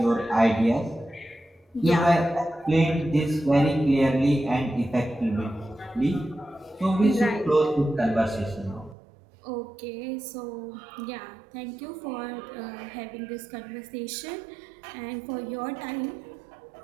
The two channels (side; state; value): left; drops out; at 9.0 s